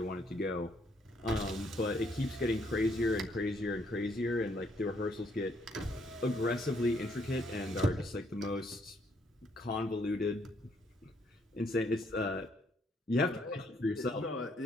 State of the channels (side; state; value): both; normal; correlation 0.70